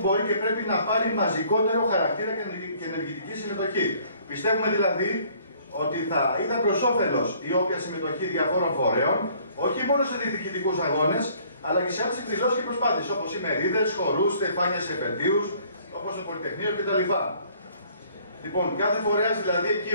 μπορεί και πρέπει να πάρει μαζικότερο χαρακτήρα και ενεργητική συμμετοχή. Πιστεύουμε δηλαδή ότι θα ήταν προς όφελος η όποια συμμετοχή διαφόρων φορέων, όχι μόνο σε διεκδικητικούς αγώνες, αλλά και σε άλλες εκδηλώσεις και προσπάθειες, όπως οι μερίδες, χορούς, στεφάνια σε επαιτίους, όπως το Πολυτεχνείο κτλ. Λοιπόν, κάθε φορέας δηλαδή εκεί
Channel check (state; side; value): inverted; both; correlation -0.59